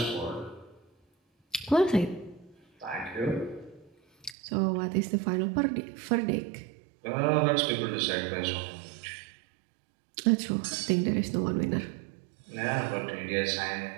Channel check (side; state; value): left; drops out; at 4.4 s